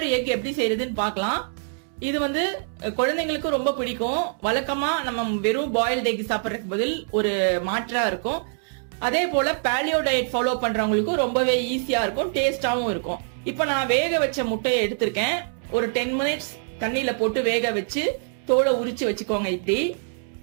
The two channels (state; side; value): silent; left; 62 dB below the other